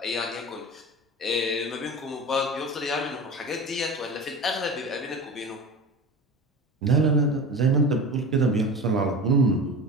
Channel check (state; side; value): normal; both; correlation 0.31